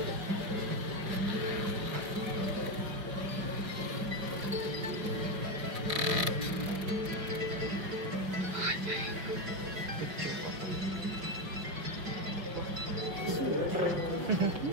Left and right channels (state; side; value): late; left; 5.7 ms